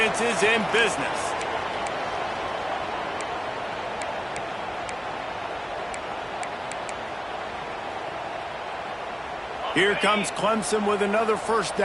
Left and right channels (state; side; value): identical; both; correlation 1.00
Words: is in business. Here comes Clemson with another first